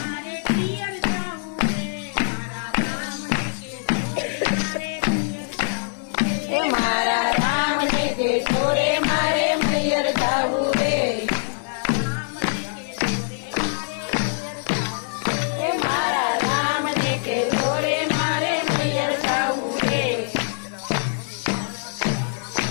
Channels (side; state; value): right; silent; 60 dB below the other